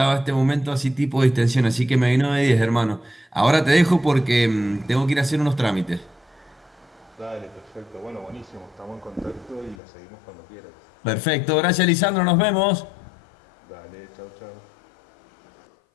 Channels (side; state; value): right; drops out; at 9.8 s